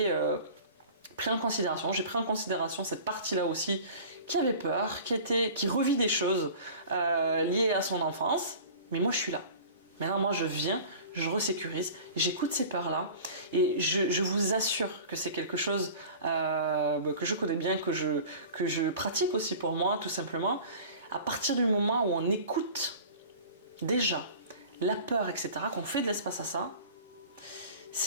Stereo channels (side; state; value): both; inverted; correlation -0.41